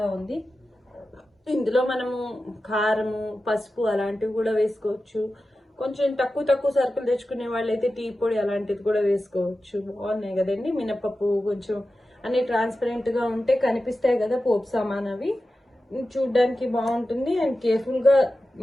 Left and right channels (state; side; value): normal; both; correlation 0.93